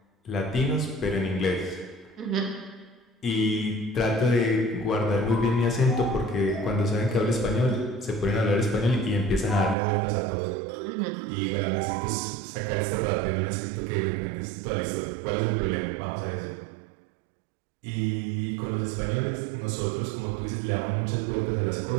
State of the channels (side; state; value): left; drops out; at 9.8 s